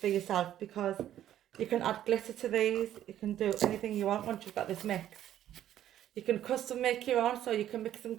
for yourself, because you can add glitter to these. You can do anything you want once you've got this mix. You can custom make your own, so you can mix some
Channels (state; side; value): quieter; left; 11.7 dB